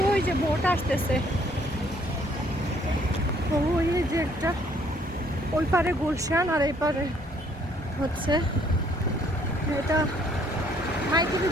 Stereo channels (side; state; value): both; normal; correlation 0.64